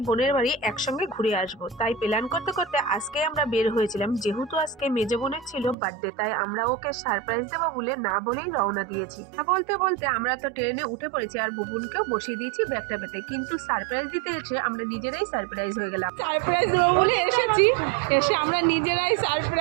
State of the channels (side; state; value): left; drops out; at 5.8 s